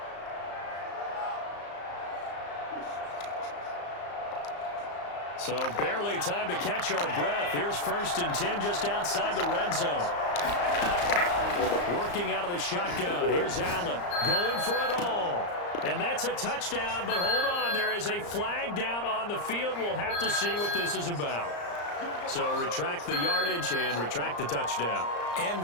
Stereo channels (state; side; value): late; right; 34 ms